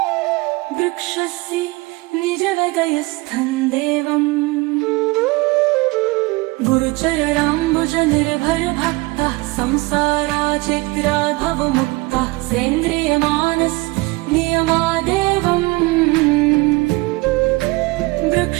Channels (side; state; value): left; quieter; 23.5 dB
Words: वृक्षस्य निजहृदयस्थं देवम् गुरुचराम्बुज निर्भर भक्तः संसाराचिरादभवमुक्तः सेन्द्रियमानस्नियमादेवम्